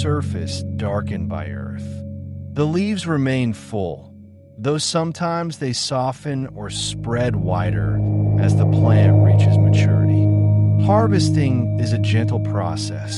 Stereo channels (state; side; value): identical; both; correlation 1.00